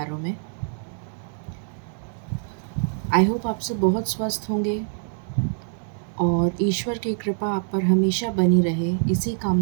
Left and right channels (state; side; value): silent; left; digital silence